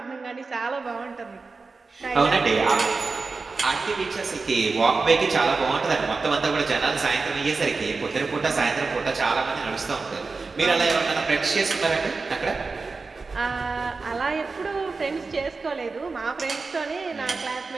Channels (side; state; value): left; quieter; 4.1 dB